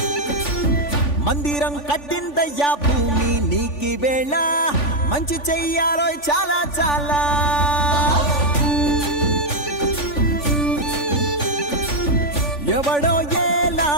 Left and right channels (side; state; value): right; late; 3.5 ms